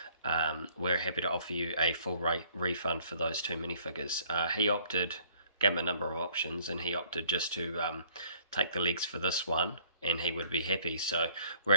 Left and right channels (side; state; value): both; inverted; correlation -0.59